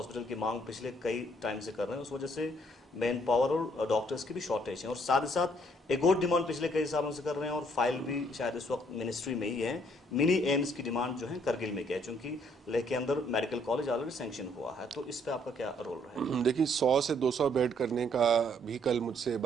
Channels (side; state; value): both; normal; correlation 0.66